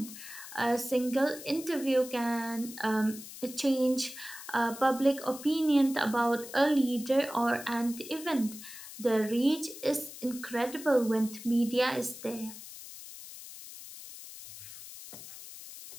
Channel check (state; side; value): noise; left; hiss, 14 dB below the sound